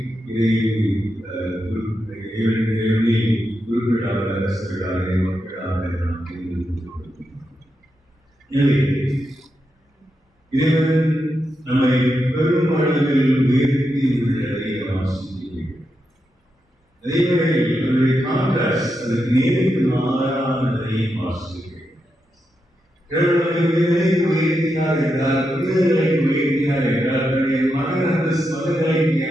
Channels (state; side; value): normal; both; correlation 0.86